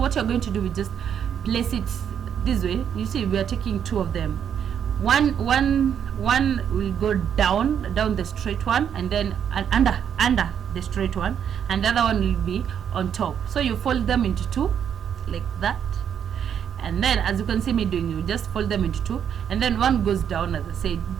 you're going to do is just place it this way. You see, we are taking 2 of them. One will go down the straight one, and then under the straight one, and the other one will be on top. So you fold them into 2 like that. And then, as you can see me doing, you just fold them into 2, and then one goes down. As I said,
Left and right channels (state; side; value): quieter; left; 8.5 dB